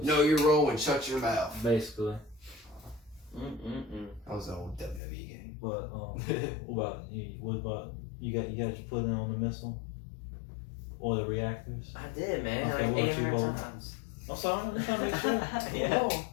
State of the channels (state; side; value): drops out; right; at 5.0 s